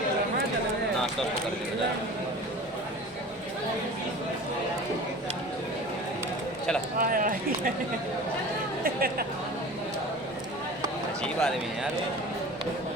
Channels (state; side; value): normal; both; correlation 0.38